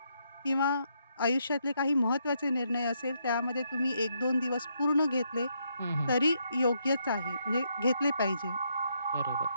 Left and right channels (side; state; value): both; inverted; correlation -0.76